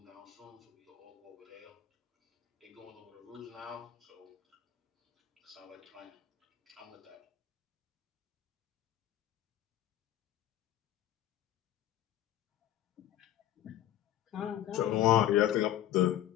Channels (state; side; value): quieter; right; 12.7 dB